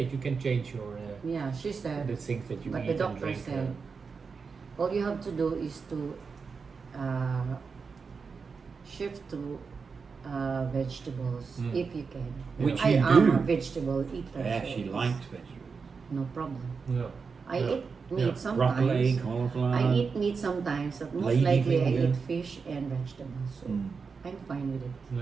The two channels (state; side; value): quieter; left; 5.2 dB